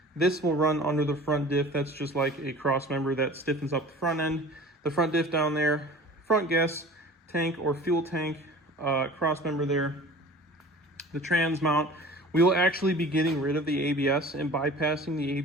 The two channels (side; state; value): both; normal; correlation 0.42